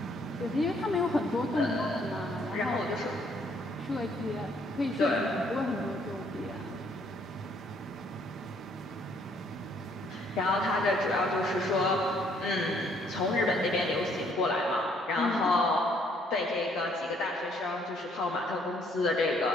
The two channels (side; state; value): both; normal; correlation 0.66